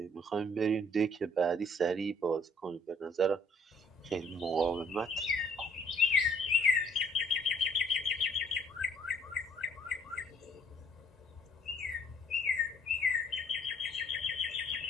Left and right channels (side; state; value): both; normal; correlation 0.61